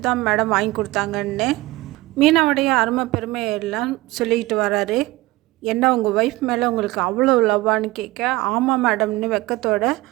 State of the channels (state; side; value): quieter; left; 19.5 dB